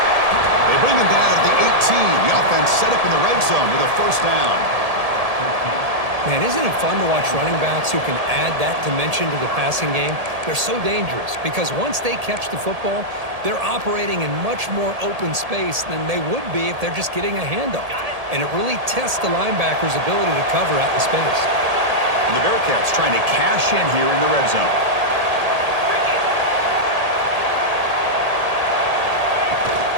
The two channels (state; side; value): late; left; 1.8 ms